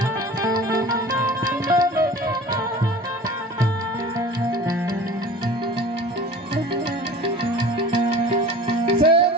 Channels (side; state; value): both; normal; correlation 0.40